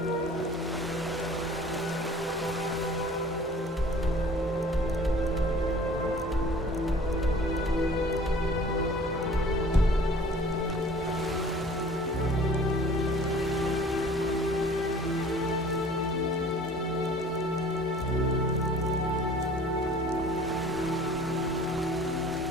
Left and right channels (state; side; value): normal; both; correlation 0.48